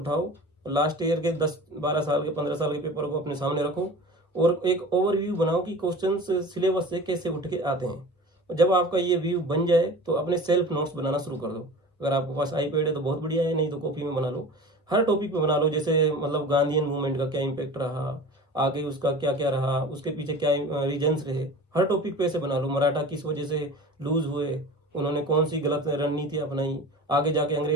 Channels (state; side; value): normal; both; correlation 0.37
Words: लास्ट ईयर के 10-12 साल के 15 साल के पेपर को अपने सामने रखो, और एक ओवरव्यू बनाओ कि क्वेश्चन सिलेबस से कैसे उठ के आते हैं। जब आपका ये व्यू बन जाए तो अपने सेल्फ नोट्स बनाना शुरू कर दो। अगर आपके पास आईपैड है तो बहुत बढ़िया है, नहीं तो कॉपी में बना लो। हर टॉपिक पे बना लो, जैसे मतलब गांधीयन मूवमेंट का क्या इम्पैक्ट रहा, आगे उसका क्या क्या रहा, उसके पीछे क्या रीजन्स रहे, हर टॉपिक पे ऐसे बना लो। मराठा किस वजह से लूज हुए, उन्होंने कौन सी गलत रणनीति अपनाई, आगे जाके